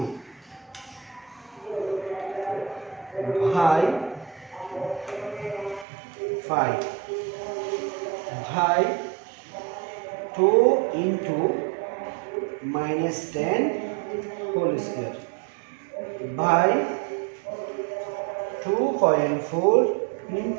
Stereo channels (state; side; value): drops out; left; at 5.9 s